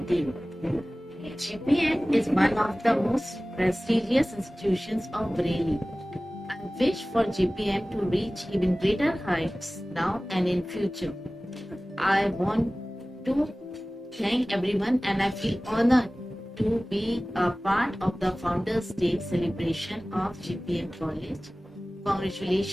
GPM is one of the most prestigious institutions of Bareilly. I wish for GPM to reach even greater heights now and in future. I want to thank everyone and I feel honored to be a part of the Founders Day celebration of GPM College.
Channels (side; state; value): both; normal; correlation 0.98